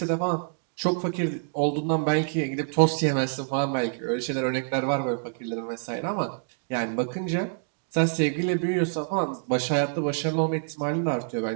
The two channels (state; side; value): silent; left; digital silence